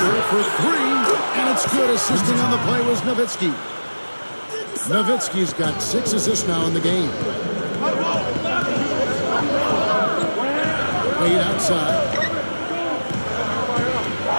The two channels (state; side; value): inverted; both; correlation -1.00